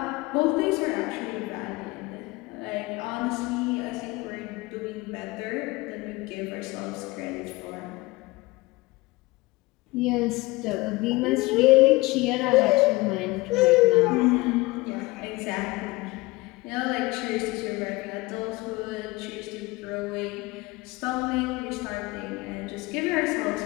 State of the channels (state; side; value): quieter; right; 21.9 dB